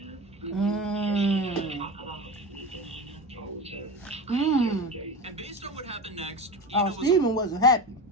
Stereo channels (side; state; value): both; normal; correlation 0.26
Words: know? Because she doesn't talk about And based on what happened next, Stephen wasn't happy